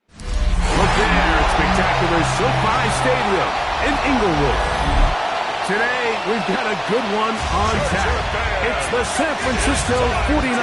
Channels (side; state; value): both; identical; correlation 1.00